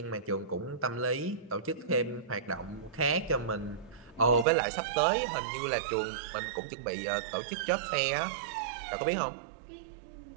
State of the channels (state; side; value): drops out; left; at 4.5 s